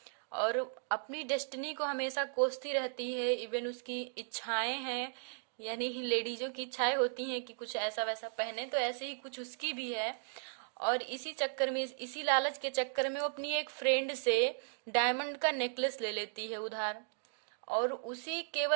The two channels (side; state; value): left; silent; digital silence